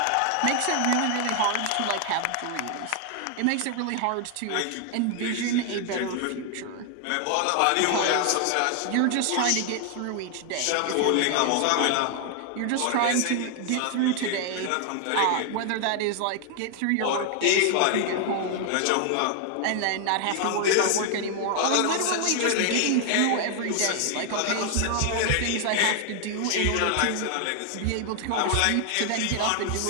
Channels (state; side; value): different; both; correlation 0.00